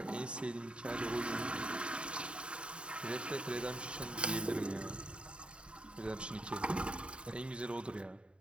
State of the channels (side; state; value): left; late; 0.054 ms